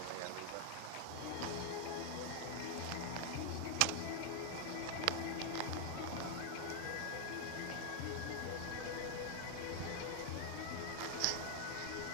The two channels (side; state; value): both; different; correlation 0.00